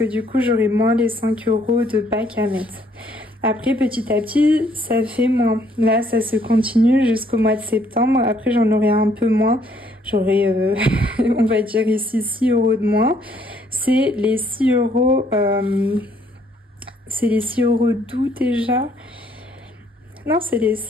du coup, j'aurai moins les 5 € de Pâques à mettre. Après, petit à petit, ça fait moins. Là, ça se continue jusqu'au mois de septembre. Après, j'en aurai un peu moins. J'aurai, on va dire ici, 6 € de moins. C'est les 6 €, c'est les 6 € d'août déjà. Non, c'est les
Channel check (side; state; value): both; normal; correlation 0.66